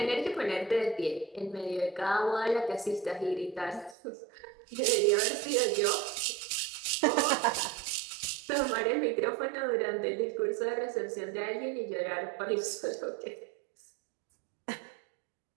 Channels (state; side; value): drops out; left; at 4.0 s